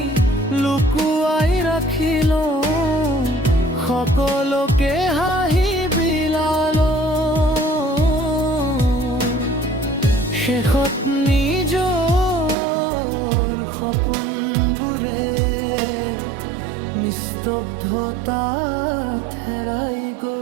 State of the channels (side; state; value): left; drops out; at 12.6 s